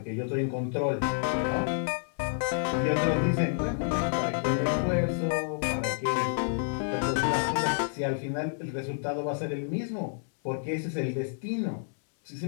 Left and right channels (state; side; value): silent; right; digital silence